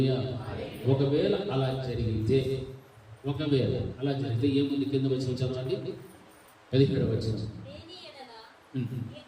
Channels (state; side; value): identical; both; correlation 1.00